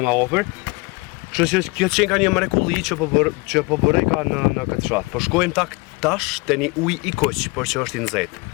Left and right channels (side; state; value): right; quieter; 26.8 dB